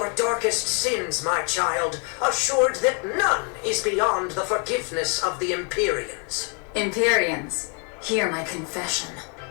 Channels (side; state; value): right; quieter; 37.9 dB